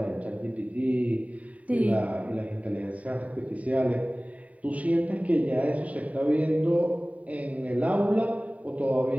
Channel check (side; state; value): left; late; 0.069 ms